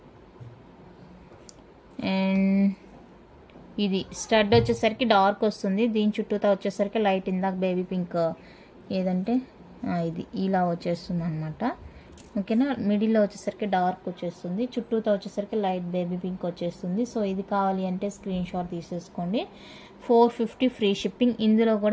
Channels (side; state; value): both; identical; correlation 1.00